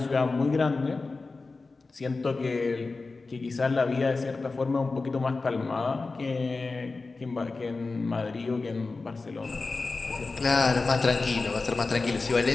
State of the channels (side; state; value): right; quieter; 3.8 dB